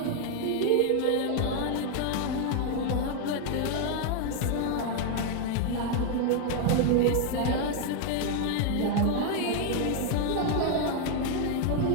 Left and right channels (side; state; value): both; different; correlation 0.00